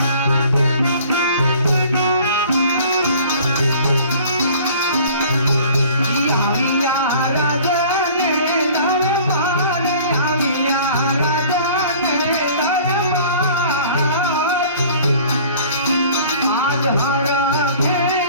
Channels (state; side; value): inverted; both; correlation -0.49